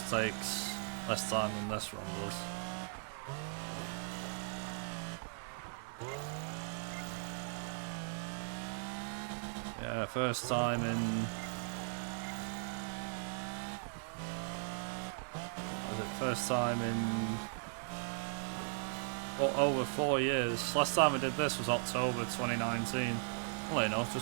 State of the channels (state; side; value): silent; left; digital silence